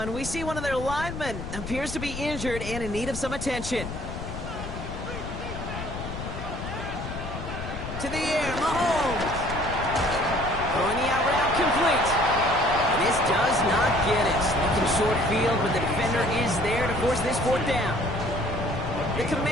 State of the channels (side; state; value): left; noise; rumble, 8 dB below the sound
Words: we see one of their linemen appears to be injured and in need of some attention. To the air, Mahomes. Throwing the out route complete. And this does not get it. Looking short field, but the defender is there to force this fourth down. The